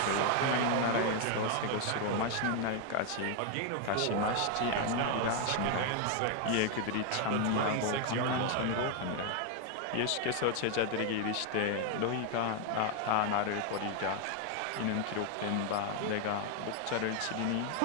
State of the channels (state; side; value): different; both; correlation 0.01